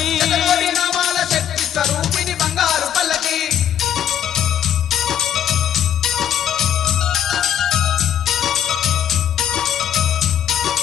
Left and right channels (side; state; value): right; quieter; 9.8 dB